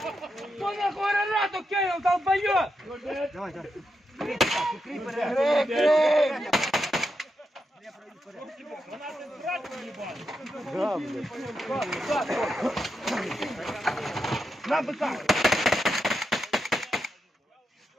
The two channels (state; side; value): normal; both; correlation 0.85